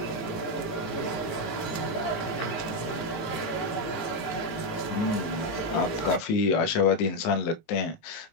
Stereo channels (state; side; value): late; right; 18 ms